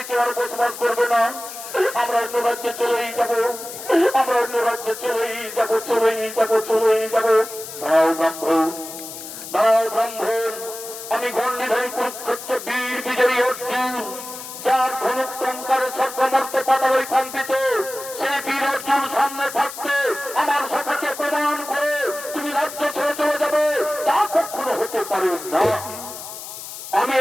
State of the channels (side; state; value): left; noise; hiss, 11 dB below the sound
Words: কেউ আর বসবাস করবে না। আমরা অন্য রাজ্যে চলেই যাব, আমরা অন্য রাজ্যে চলেই যাব। দাঁড়াও ব্রাহ্মণ, আমি গণ্ডিধারী কুরুক্ষেত্র বীর বিজয়ী অর্জুন, যার ধনুক টঙ্কারে স্বর্গমর্ত পাতালই কম্পিত, সেই বীর অর্জুন সামনে থাকতে আমার সখাকে প্রমাণ করে তুমি রাজ্য ছেড়ে চলে যাবে, তা কখনো হতে পারে না। আমি